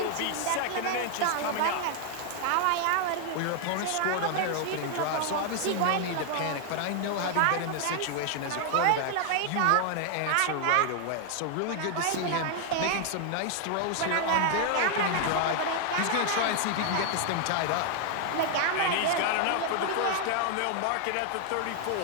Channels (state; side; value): different; both; correlation 0.00